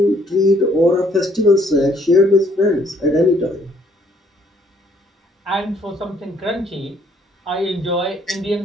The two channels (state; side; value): normal; both; correlation 0.65